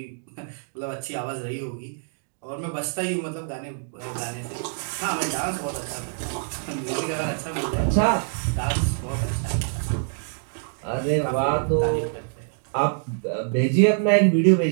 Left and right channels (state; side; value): silent; left; digital silence